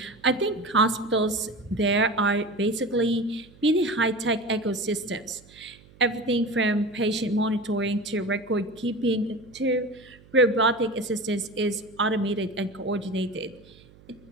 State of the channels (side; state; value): right; noise; hum, 25 dB below the sound